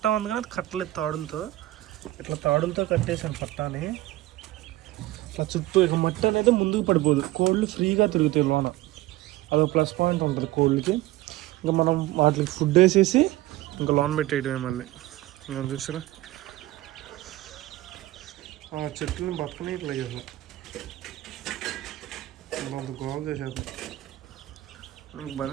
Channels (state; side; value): quieter; left; 16.9 dB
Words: ఉంది కానీ అది కట్టలేదు తాడులతో. ఇట్లా తాడులతో కట్టేసాను పట్టాని. ఇట్లా చుట్టూ ఇక మట్టి అనేది ముందుకు పడిపోదు, కోళ్ళు ఫ్రీగా తిరుగుతాయి లోన. అదొక ప్లస్ పాయింట్ ఉంటుంది కోళ్ళకి. ఇంకా మనం వాటికి ఫుడ్ వేసేసి ఇంకా లోన్ పెట్టేయడమే మళ్ళీ. ఇంకా చూసారా ఆ చెట్లను బట్టని ఇట్లా చేసాం, అంత గోల్ చేసేద్దాం.